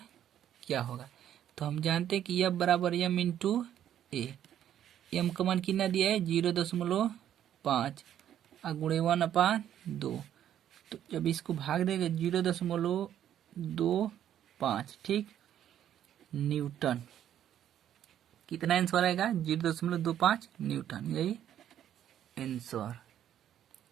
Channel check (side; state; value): left; quieter; 10.6 dB